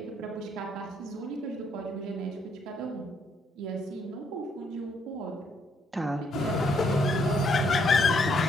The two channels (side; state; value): both; normal; correlation 0.71